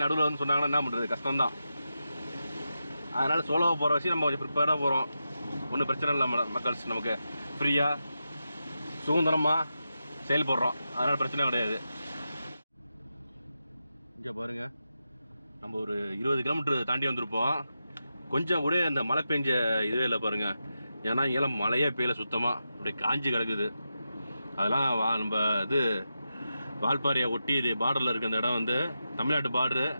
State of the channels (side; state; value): both; inverted; correlation -0.89